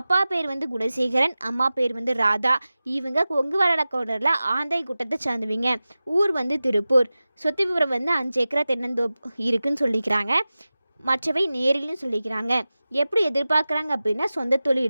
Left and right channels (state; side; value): inverted; both; correlation -0.96